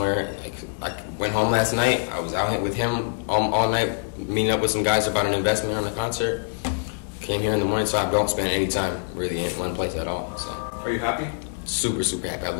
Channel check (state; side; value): silent; right; 62 dB below the other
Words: Like, I went home last night. I was out with him all night, meeting up with some guys about an investment on a concert. Came here in the morning, so I don't spend any time really in one place at all. So Are you happy? super happy. I